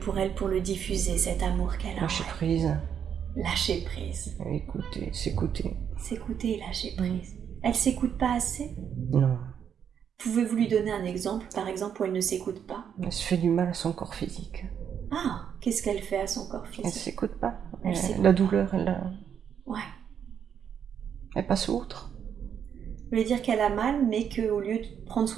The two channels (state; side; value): quieter; left; 8.2 dB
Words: elle pour le diffuser, cet amour qu'elle a en Lâcher elle? prise. Lâcher prise. Écouter, s'écouter. S'écouter et lâcher prise. Elle s'écoute pas assez? Non. Pouvez-vous lui donner un exemple, par exemple, où elle ne s'écoute pas? Elle se fait du mal à son corps physique. Ah, qu'est-ce qu'elle fait à son corps Elle physique? s'écoute pas. Elle s'écoute La pas. douleur, Ouais. elle passe outre. Vous voulez dire qu'elle a mal, mais qu'au lieu de prendre